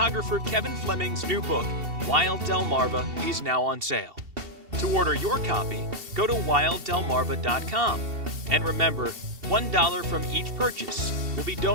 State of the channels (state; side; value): late; left; 2.7 ms